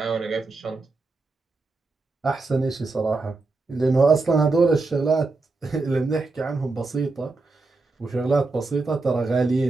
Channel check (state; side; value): quieter; left; 3.7 dB